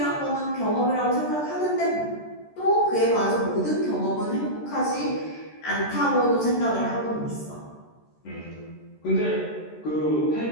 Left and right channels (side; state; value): right; late; 13 ms